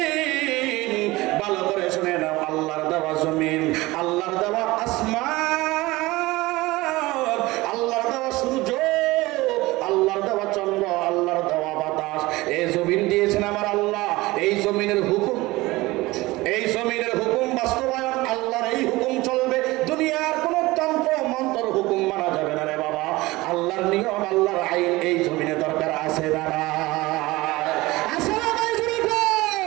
ভালো করে শুনে নাও, আল্লাহর দেওয়া জমিন, আল্লাহর দেওয়া আসমান, আল্লাহর দেওয়া সূর্য, আল্লাহর দেওয়া চন্দ্র, আল্লাহর দেওয়া বাতাস, এই জমিন দিয়েছেন আমার আল্লাহ। এই জমিনের হুকুম, এই জমিনের হুকুম বাস্তবায়ন, আল্লাহর এই হুকুম চলবে। দুনিয়ার কোন তন্ত্র মন্ত্র হুকুম মানা যাবে না রে বাবা। আল্লাহর আল্লাহর নিয়ম আল্লাহর আইন এই জমিনে দরকার আছে না আছে না নাই জুড়ে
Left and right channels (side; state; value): left; quieter; 20.3 dB